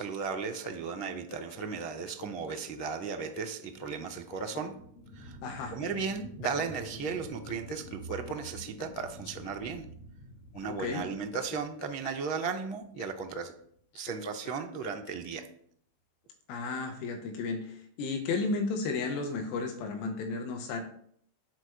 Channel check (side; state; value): right; late; 20 ms